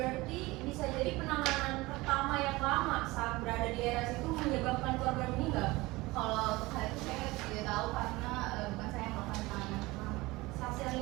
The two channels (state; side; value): quieter; left; 21.2 dB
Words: bisa jadi penanganan pertama yang lama saat berada di RS itu menyebabkan korban meninggal. Kalau untuk hal itu saya tidak tahu karena bukan saya yang melakukan penanganan pertama. Saksi ahli